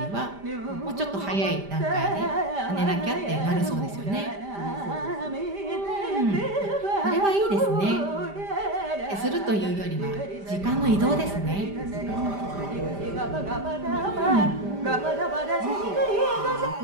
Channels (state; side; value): late; left; 5.0 ms